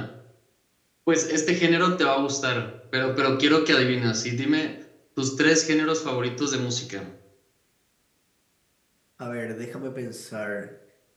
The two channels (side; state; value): both; identical; correlation 1.00